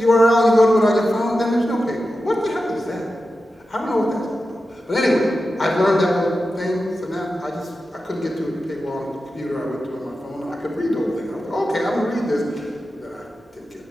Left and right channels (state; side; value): normal; both; correlation 0.92